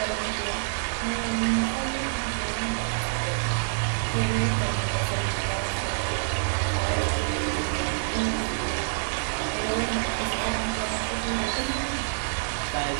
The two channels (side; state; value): left; silent; digital silence